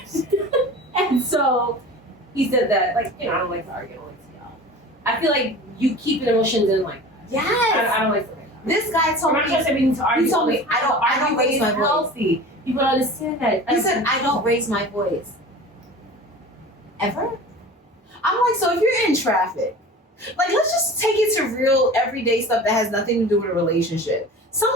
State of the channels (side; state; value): both; normal; correlation 0.37